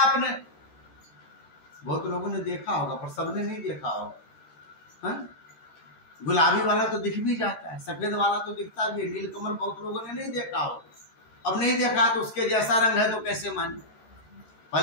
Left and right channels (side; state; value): right; late; 14 ms